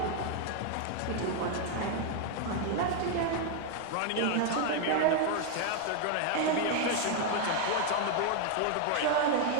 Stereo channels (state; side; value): different; both; correlation 0.00